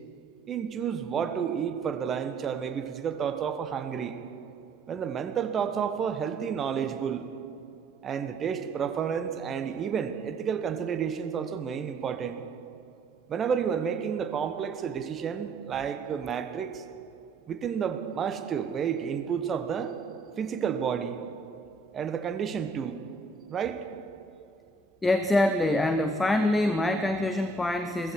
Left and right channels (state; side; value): quieter; left; 3.3 dB